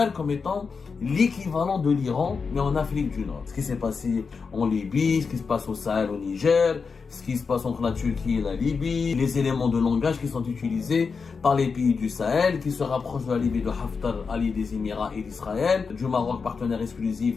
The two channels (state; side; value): quieter; right; 5.2 dB